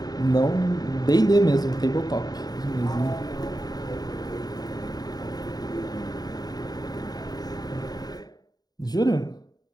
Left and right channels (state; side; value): late; right; 0.19 ms